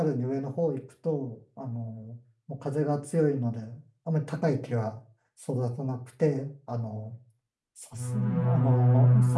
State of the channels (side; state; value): both; identical; correlation 1.00